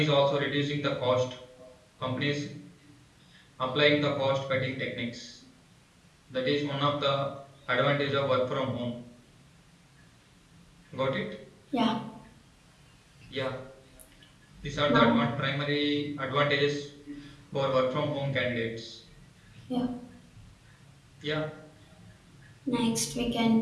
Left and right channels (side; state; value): both; identical; correlation 1.00